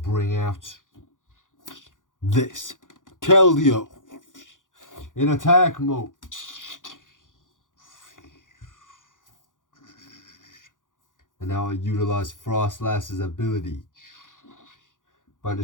out this. Keldeo. In attack mode. And now I utilize Frostlass's ability by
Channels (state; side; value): late; right; 0.88 ms